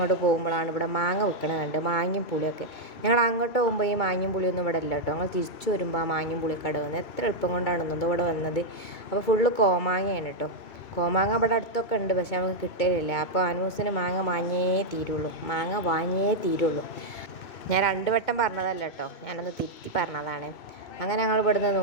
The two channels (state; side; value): late; right; 2.2 ms